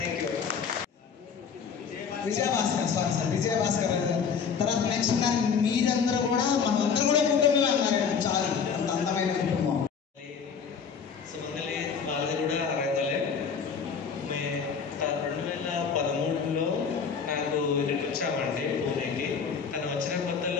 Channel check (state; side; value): quieter; right; 6.3 dB